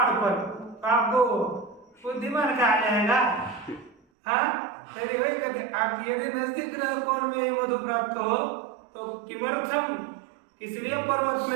पर, आपको बुद्धिमान कहा जाएगा। हाँ वही कहते, आप यदि नजदीक रह कोण में ही मधु प्राप्त हो तो किमर्थम, इसलिए पर्वत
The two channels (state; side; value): drops out; left; at 4.0 s